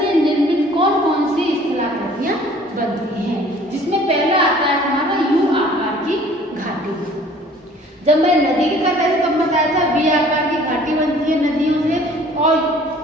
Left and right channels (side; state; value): both; normal; correlation 0.52